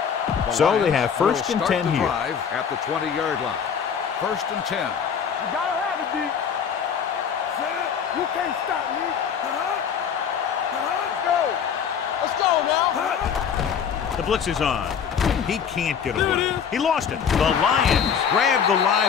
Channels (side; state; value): right; quieter; 7.4 dB